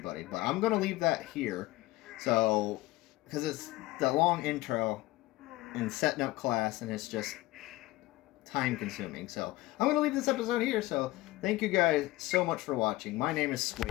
But I'm going to leave that here. So, because it's the long intro and setting up class, and it's just time consuming. So, I'm going to leave this episode here. So, thank you guys so much for watching. My name is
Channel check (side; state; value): right; quieter; 18.7 dB